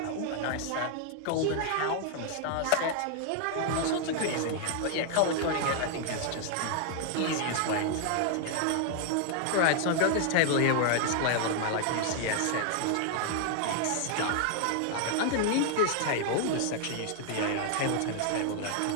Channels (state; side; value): different; both; correlation 0.00